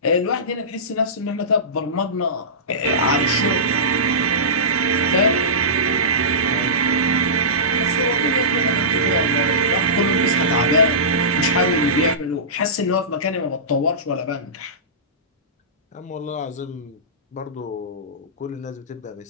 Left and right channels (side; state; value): both; normal; correlation -0.20